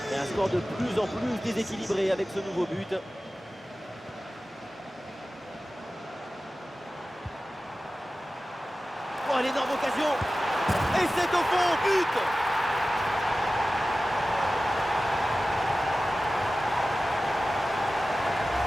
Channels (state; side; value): normal; both; correlation 0.95